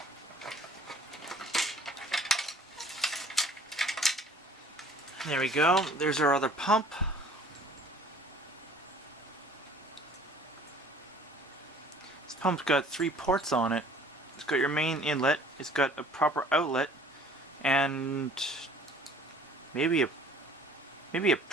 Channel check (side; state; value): both; normal; correlation 0.52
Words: There we go. There's our other pump. This pump's got 3 ports on it. It's got your main inlet, it's got a proper outlet, and maybe a